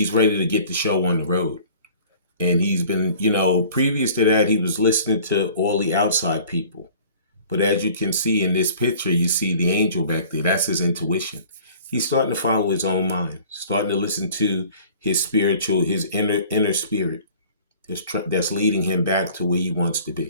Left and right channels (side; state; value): both; inverted; correlation -0.49